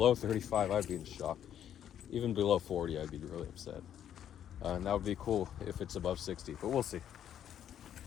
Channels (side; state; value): right; quieter; 10.0 dB